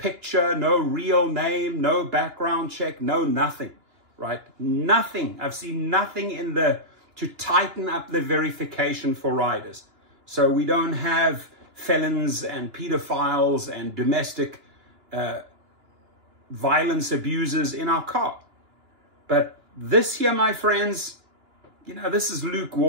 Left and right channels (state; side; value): late; left; 2.9 ms